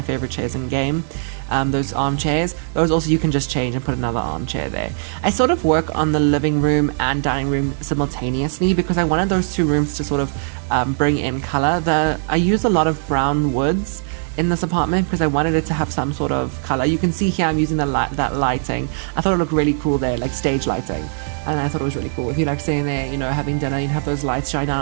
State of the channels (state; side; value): silent; left; digital silence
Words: favorite chairs in game. Those armchairs. Those also you can just change and put another armchair there. I sort of work on the living room and dining room simultaneously because I wanted those 2 rooms to sort of bring in color. I use a lot of brown woods in this apartment because I wanted it to have some sort of color. You can see here I'm using that lighting. I thought it looked really cool there, like stage lighting. And I thought it was really cool. If you like sitting there, having dinner and have those lights shine